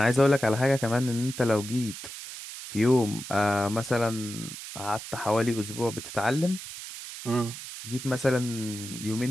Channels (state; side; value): noise; right; hiss, 11 dB below the sound